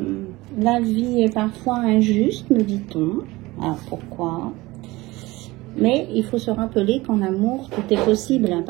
la vie est parfois injuste, me dit-on. Alors, pourquoi? Mais il faut se rappeler qu'en amour, tout est possible à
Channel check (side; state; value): left; quieter; 20.5 dB